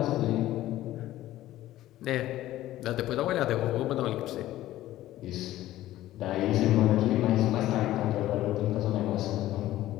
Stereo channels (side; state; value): right; quieter; 14.7 dB